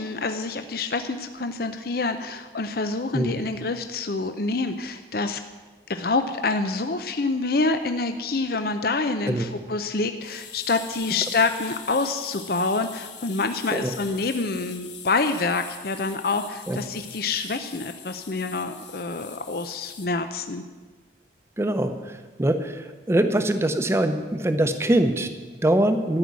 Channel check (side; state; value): both; normal; correlation 0.36